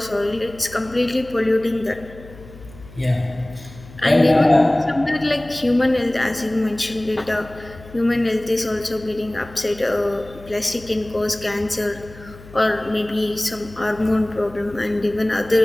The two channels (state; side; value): noise; left; hum, 19 dB below the sound